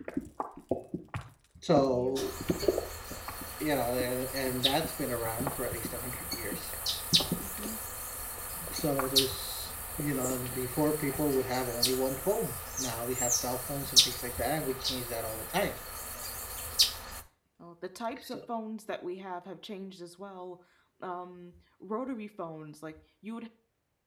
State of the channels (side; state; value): both; identical; correlation 1.00